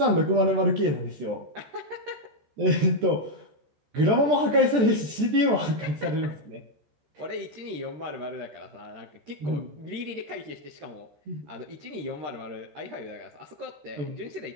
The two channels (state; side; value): late; left; 14 ms